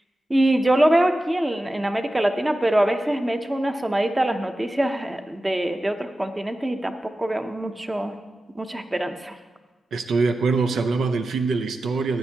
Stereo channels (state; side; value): normal; both; correlation 0.93